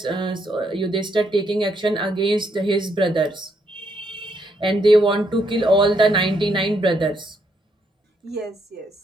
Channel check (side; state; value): both; normal; correlation 0.75